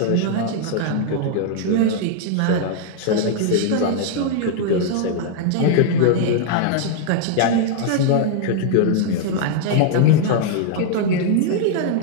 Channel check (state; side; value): different; both; correlation -0.01